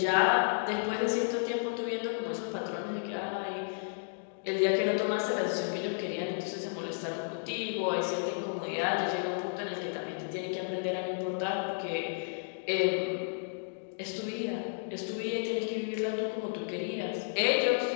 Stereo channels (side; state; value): right; silent; digital silence